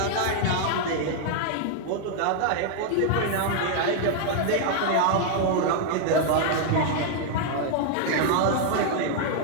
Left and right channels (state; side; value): different; both; correlation 0.00